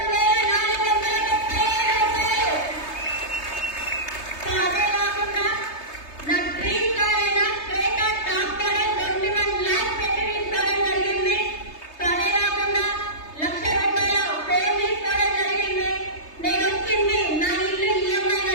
రూపాయలు. సో అదే కాకుండా నా డ్రీమ్ కార్ అయిన క్రేటా టాప్ మోడల్ 21 lakhs పెట్టి తీసుకోవడం జరిగింది. సో అదే కాకుండా 1,00,000 రూపాయల ఫోన్ తీసుకోవడం జరిగింది. నేను వచ్చింది నా ఇల్లు ఈఎంఐ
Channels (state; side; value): late; right; 3.3 ms